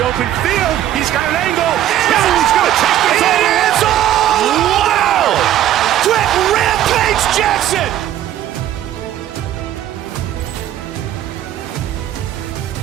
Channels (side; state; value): left; quieter; 12.2 dB